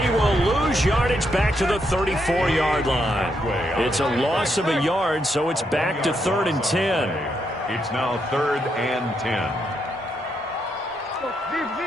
will lose yardage back to the 34-yard line. It's a loss of a yard, so it's back to 3rd and 10. It's now 3rd and 10.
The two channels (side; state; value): both; normal; correlation 0.79